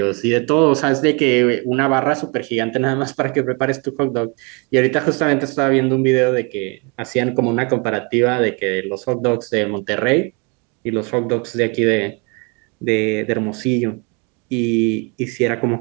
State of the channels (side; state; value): left; quieter; 32.0 dB